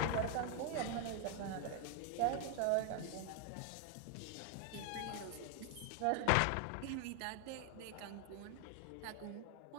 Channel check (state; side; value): different; both; correlation 0.00